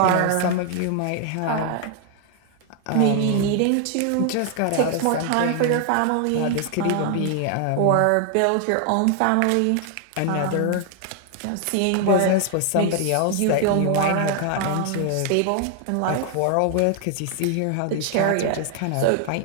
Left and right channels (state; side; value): different; both; correlation 0.00